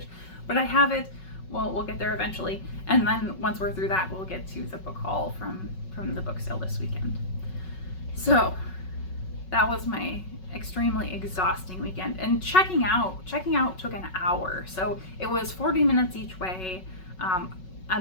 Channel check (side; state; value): right; late; 5.4 ms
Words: but I have it. Well, we'll get there eventually, and then once we're through that, we'll get to the book haul from the book sale this weekend. So that was my extremely exhausting weekend, and checking out took an hour. So it was 40 minutes each way,